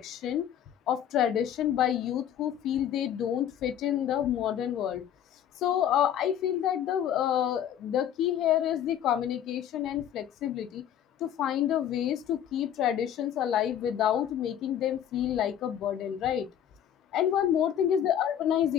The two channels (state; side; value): quieter; right; 10.0 dB